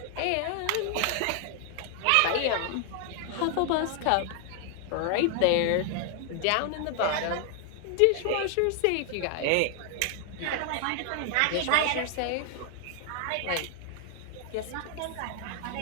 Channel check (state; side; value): different; both; correlation 0.00